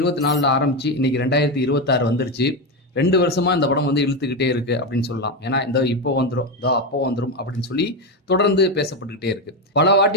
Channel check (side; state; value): both; normal; correlation 0.12